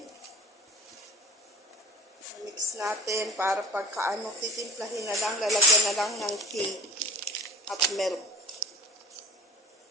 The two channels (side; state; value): both; normal; correlation 0.38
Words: Mix natin para pagkaano, titimplahin na lang, lalagyan na lang ng tea at milk.